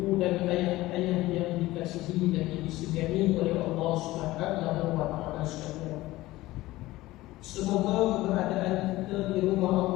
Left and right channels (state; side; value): quieter; right; 17.9 dB